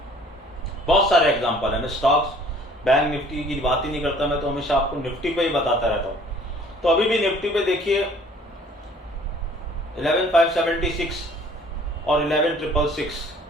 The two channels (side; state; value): both; normal; correlation 0.54